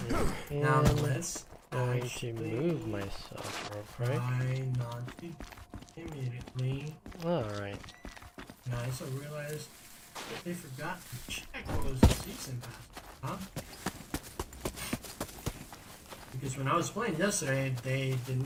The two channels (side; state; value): both; identical; correlation 1.00